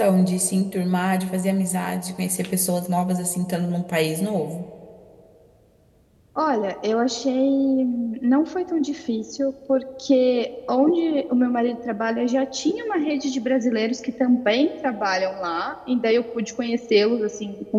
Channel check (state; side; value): identical; both; correlation 1.00